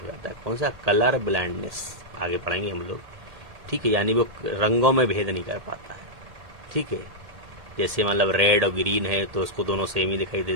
हो जाता है। कौन सा, कलर ब्लाइंडनेस, आगे पढ़ेंगे हम लोग, ठीक है। यानी वो रंगों में भेद नहीं कर पाता है, ठीक है। जैसे मतलब रेड और ग्रीन है तो उसको दोनों सेम ही दिखाई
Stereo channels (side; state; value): left; late; 1.8 ms